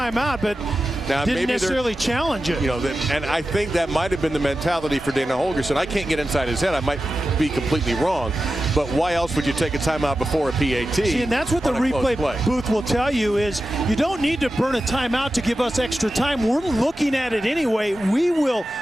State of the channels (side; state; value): both; normal; correlation 0.92